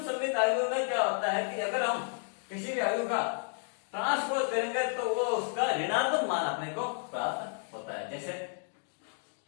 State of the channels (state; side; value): silent; right; 56 dB below the other